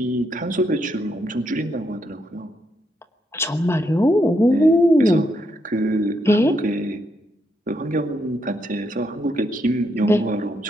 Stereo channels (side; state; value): both; normal; correlation 0.79